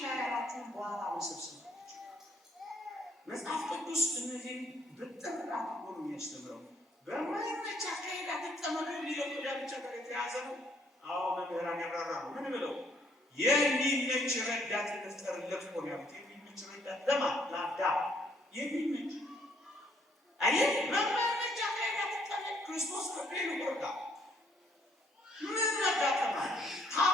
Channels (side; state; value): both; normal; correlation 0.66